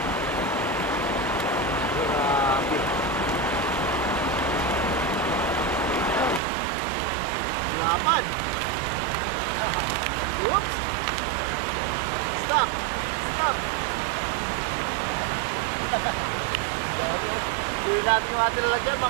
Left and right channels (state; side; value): drops out; left; at 6.4 s